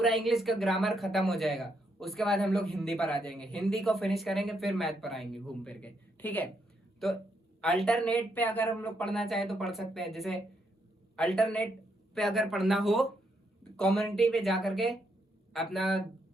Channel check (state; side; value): normal; both; correlation 0.77